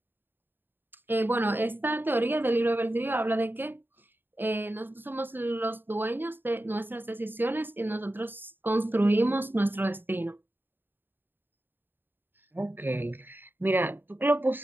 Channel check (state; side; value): late; left; 0.096 ms